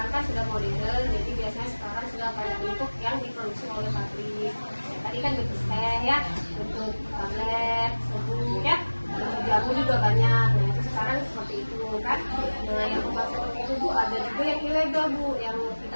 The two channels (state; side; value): inverted; both; correlation -1.00